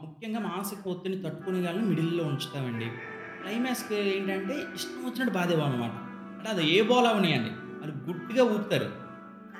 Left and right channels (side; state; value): both; identical; correlation 1.00